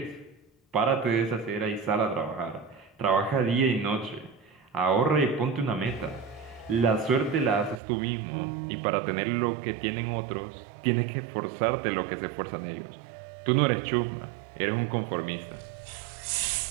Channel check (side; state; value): left; drops out; at 7.8 s